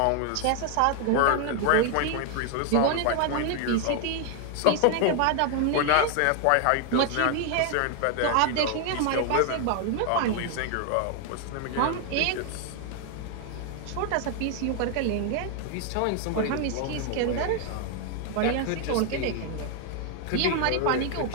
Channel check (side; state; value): both; different; correlation 0.00